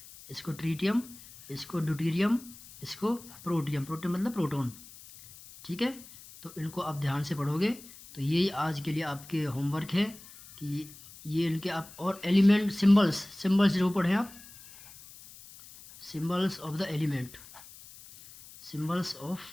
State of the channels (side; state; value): left; noise; hiss, 19 dB below the sound